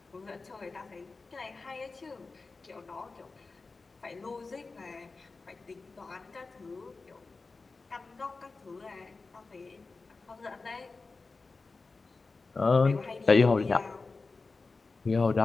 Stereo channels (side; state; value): right; quieter; 3.9 dB